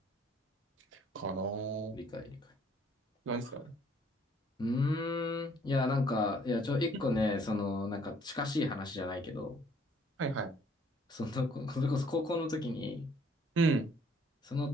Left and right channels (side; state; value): both; normal; correlation 0.61